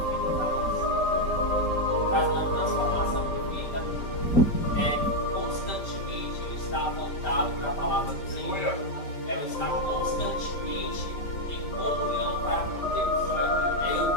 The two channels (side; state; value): right; late; 5.1 ms